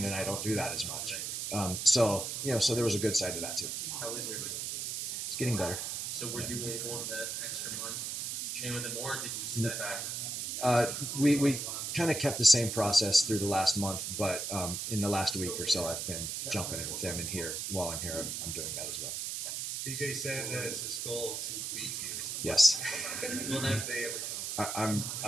and I don't do that as much. So there was a good side to that too. How was your knee? It's getting better. So were you able in that extra month to train with him, or did you step back? We kind of kept the same process through the last month, but in the last week or so, I've been jumping in with them, and while I'm here, I'm doing that as well. DJ said that it's his goal to beat you. Yes. Will that day ever come?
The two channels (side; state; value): right; noise; hiss, 3 dB below the sound